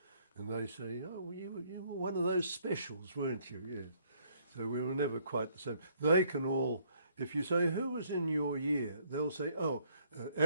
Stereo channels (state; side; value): inverted; both; correlation -0.66